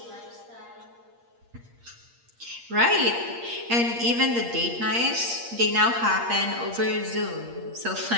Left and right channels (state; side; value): late; left; 8.6 ms